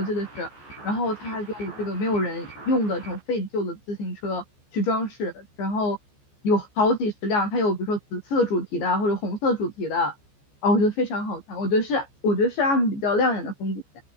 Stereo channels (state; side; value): late; right; 14 ms